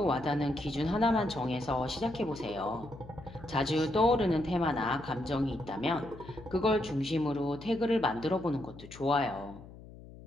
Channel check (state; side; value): noise; left; hum, 17 dB below the sound